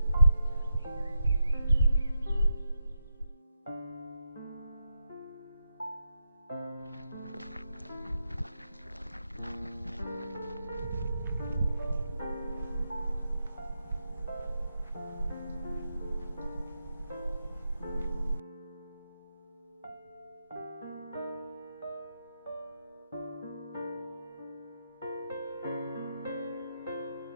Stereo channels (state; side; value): inverted; both; correlation -0.86